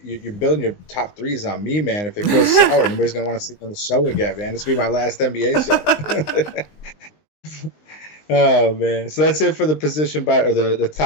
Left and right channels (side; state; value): right; late; 19 ms